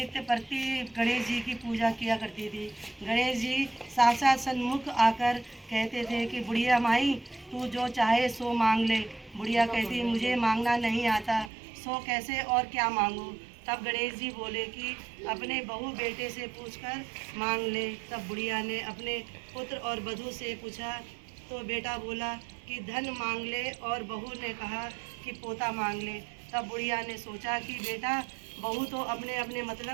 प्रति गणेश जी की पूजा किया करती थी। गणेश जी साक्षात सन्मुख आकर कहते थे कि बुढ़िया माई, तू जो चाहे सो मांग ले। बुढ़िया कहती, मुझे मांगना नहीं आता, सो कैसे और क्या मांगूं। तब गणेश जी बोले कि अपने बहू बेटे से पूछकर मांग ले। तब बुढ़िया ने अपने पुत्र और वधू से पूछा तो बेटा बोला कि धन मांग ले, और बहू ने कहा कि पोता मांग ले। तब बुढ़िया ने सोचा कि बेटा बहू तो अपने अपने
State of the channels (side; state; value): left; drops out; at 11.5 s